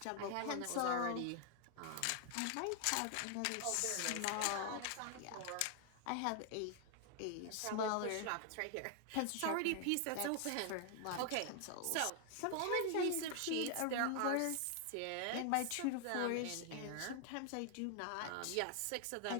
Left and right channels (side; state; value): both; different; correlation 0.00